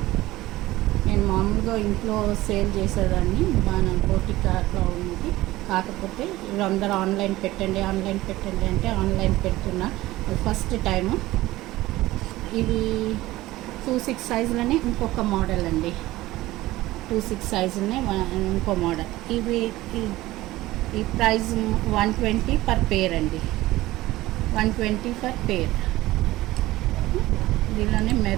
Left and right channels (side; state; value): left; quieter; 17.5 dB